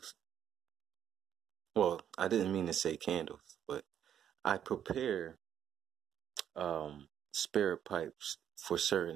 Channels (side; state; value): left; quieter; 9.6 dB